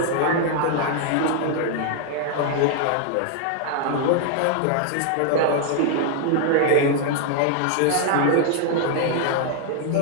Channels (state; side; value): different; both; correlation 0.00